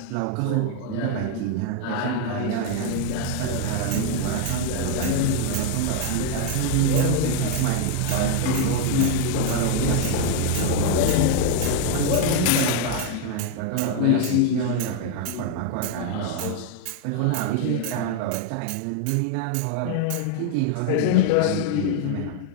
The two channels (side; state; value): both; different; correlation 0.00